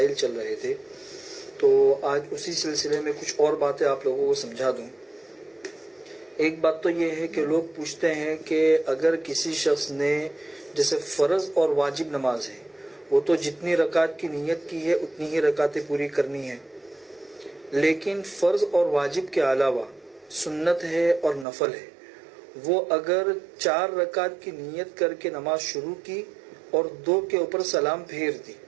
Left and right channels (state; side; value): drops out; left; at 21.5 s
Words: چل رہے تھے، تو آج اسی سلسلے میں کچھ اور باتیں آپ لوگوں کو سمجھا دوں۔ ایک بات تو یہ ہے کہ لوگ پوچھتے ہیں کہ اگر کسی شخص نے جیسے فرض اور واجب نماز ہے، وہ تو جتنی رکعت کی نیت کی ہے اتنی ہی رکعتیں پوری کرنی ہے، لیکن فرض اور واجب کے علاوہ سنت ہے اور نفل ہے، وہ اگر 4 رکعت کی نیت کر کے نماز شروع کی اور 2 کے اوپر سلام پھیر دی